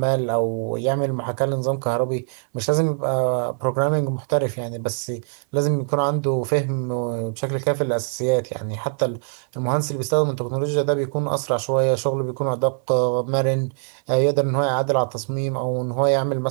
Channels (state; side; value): silent; left; 60 dB below the other